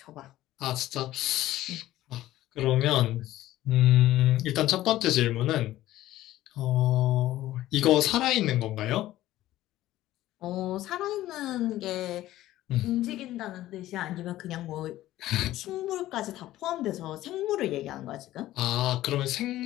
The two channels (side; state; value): right; quieter; 14.9 dB